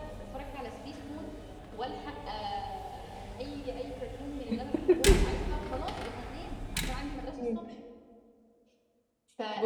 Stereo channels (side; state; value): both; identical; correlation 1.00